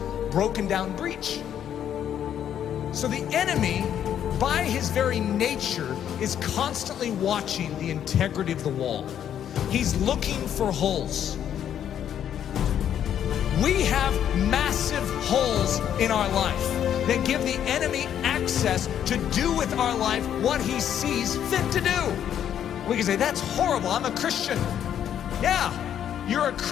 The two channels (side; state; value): right; quieter; 9.8 dB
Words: broken down breach. So the enemy, by his very nature, is constantly watching the integrity of the wall. He's looking for holes. We have massive holes in our life that give the enemy access to do with our life what he sees fit to do. We can say, that's horrible, I'm a Christian. Yeah, you're a